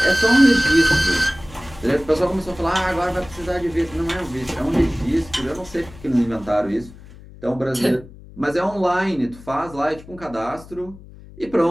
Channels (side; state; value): left; noise; hum, 19 dB below the sound